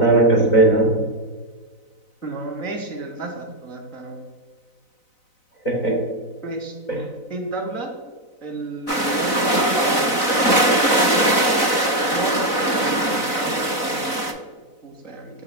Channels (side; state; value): right; late; 4.0 ms